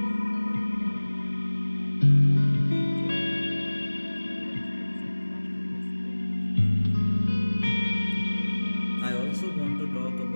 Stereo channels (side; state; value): both; inverted; correlation -1.00